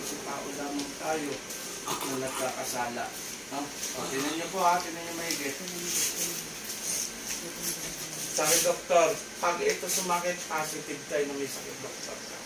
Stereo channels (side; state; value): both; identical; correlation 1.00